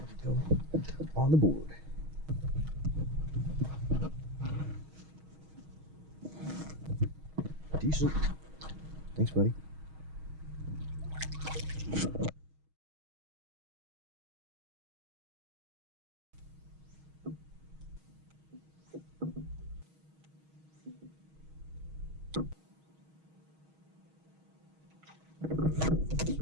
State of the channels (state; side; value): late; left; 6.3 ms